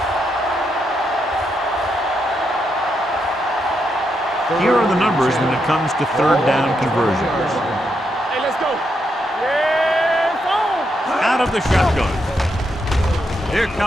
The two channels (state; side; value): normal; both; correlation 0.81